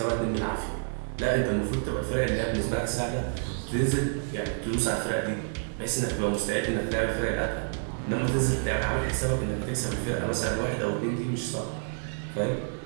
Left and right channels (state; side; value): silent; left; 59 dB below the other